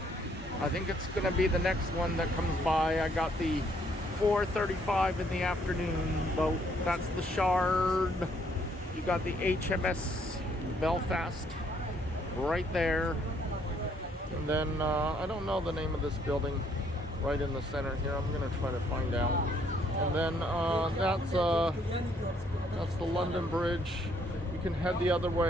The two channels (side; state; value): both; normal; correlation 0.67